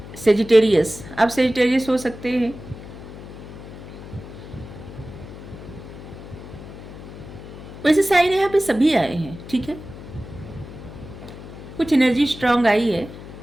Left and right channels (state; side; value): noise; left; hum, 14 dB below the sound